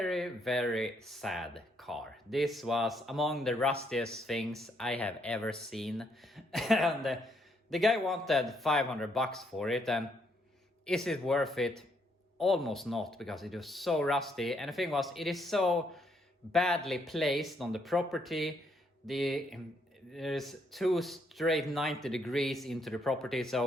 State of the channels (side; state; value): both; normal; correlation 0.73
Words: very sad car. This was among the rustiest things I have ever seen. And the guy wanted $500 for it, and is it worth it? Almost not, because it was so rusty. And the thing was, it is so badly placed on the property. There's two straight 90 degrees into the property,